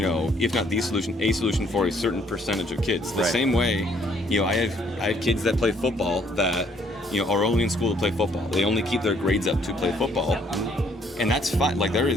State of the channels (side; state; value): both; normal; correlation 0.65